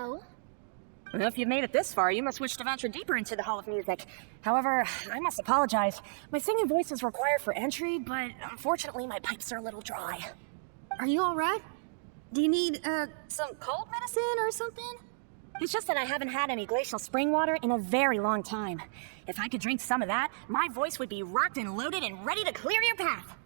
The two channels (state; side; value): silent; left; digital silence